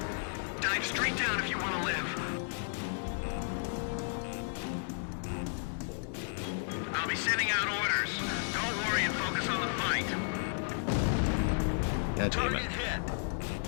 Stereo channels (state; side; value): silent; right; 56 dB below the other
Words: Dive straight down if you want to live. I'll be sending out orders. Don't worry and focus on the fight. God damn it.